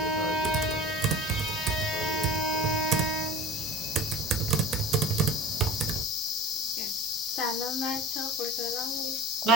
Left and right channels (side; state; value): both; normal; correlation 0.36